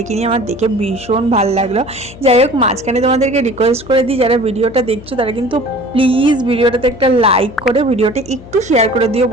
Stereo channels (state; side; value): noise; left; hum, 18 dB below the sound